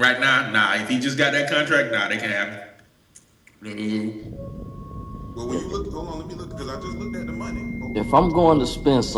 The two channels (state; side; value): identical; both; correlation 1.00